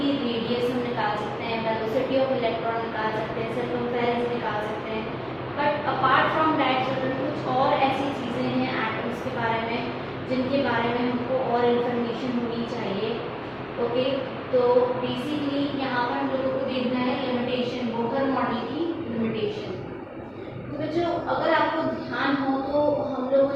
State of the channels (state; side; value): identical; both; correlation 1.00